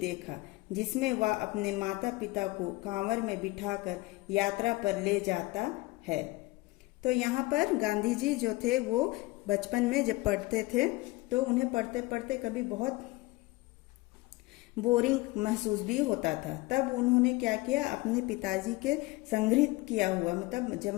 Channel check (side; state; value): right; quieter; 21.7 dB